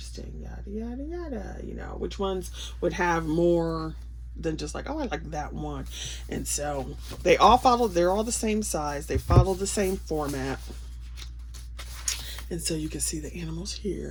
yada yada yada, you know, which ones would have more than just like, oh, I like that one. And so they all followed, they're all the same size, they follow the same format. And so you can see the animals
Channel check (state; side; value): identical; both; correlation 1.00